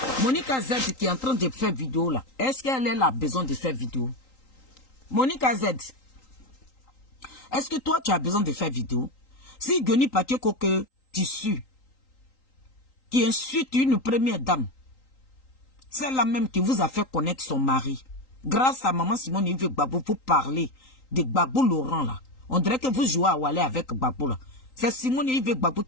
Monica Z qui est en train de faire vidéo là, est-ce qu'elle a besoin de faire vidéo? Monica Z, est-ce que toi tu as besoin de faire vidéo? Si Johnny Pacheco que tissu, qui insulte une première dame, c'est la même qui vous a fait connaître son mari. Grâce à maman Simone Yves Gbagbo, vous parlez de Gbagbo Laurent là. On dirait que vous jouez à Wallet avec Gbagbo là. C'est Simone Yves Gbagbo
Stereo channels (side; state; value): right; late; 3.8 ms